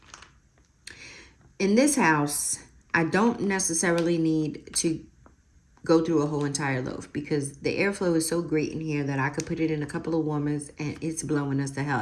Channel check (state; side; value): identical; both; correlation 1.00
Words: In this house, I don't necessarily need to go through a whole entire loaf because the airflow is so great in here that I could put it in a couple of warmers and it's blowing us the hell